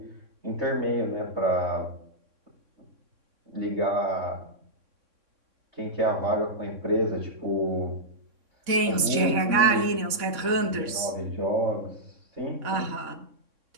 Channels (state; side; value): late; left; 3.6 ms